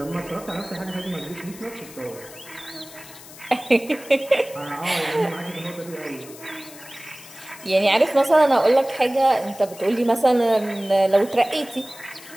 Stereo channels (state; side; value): noise; left; hiss, 18 dB below the sound